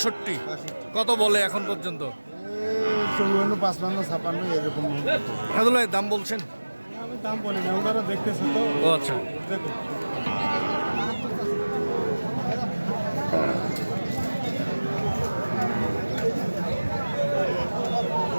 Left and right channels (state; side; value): inverted; both; correlation -1.00